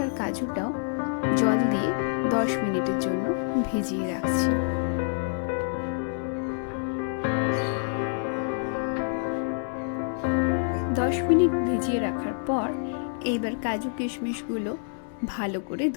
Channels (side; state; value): right; silent; digital silence